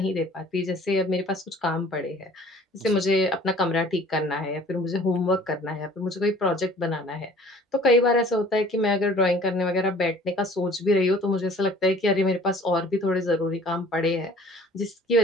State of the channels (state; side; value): normal; both; correlation 0.51